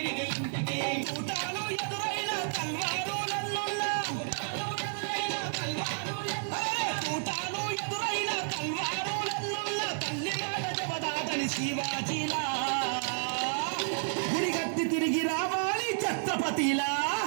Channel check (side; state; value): left; silent; 57 dB below the other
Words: కూటాలు ఎదురైన తల్వారు తల్లి మాట జబదాదని శివాజీలా గుడిగట్టి తిరిగి రావాలి ఛత్రపతిలా